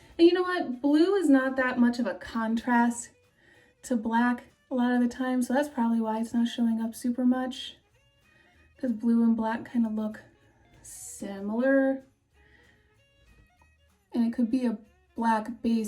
And you know what? Blue is not that much of a contrast to black a lot of the time, so that's probably why it's not showing up super much, because blue and black kind of look similar. And it could be a black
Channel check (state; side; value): identical; both; correlation 1.00